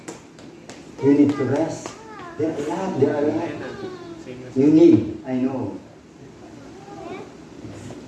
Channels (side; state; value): both; identical; correlation 1.00